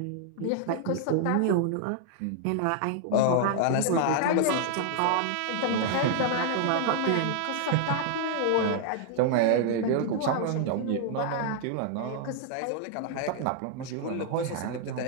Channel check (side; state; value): both; different; correlation -0.01